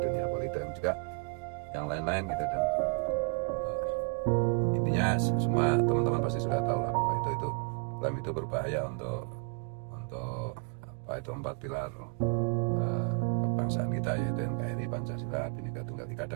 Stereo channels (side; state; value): left; quieter; 33.9 dB